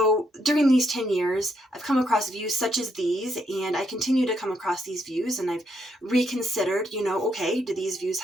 during these 10 years, I've come across views such as these, and I continue to come across these views, and I've reconsidered, okay, do these views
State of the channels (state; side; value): normal; both; correlation 0.76